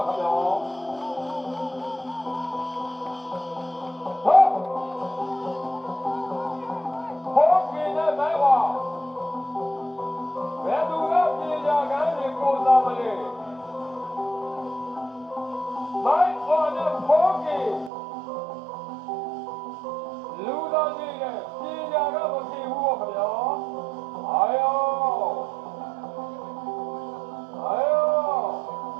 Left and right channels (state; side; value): drops out; left; at 17.9 s